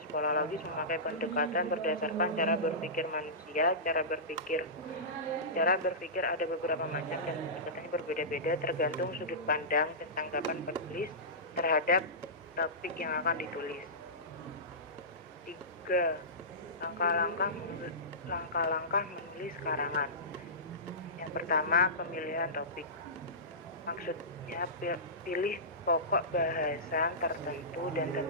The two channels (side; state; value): both; normal; correlation -0.19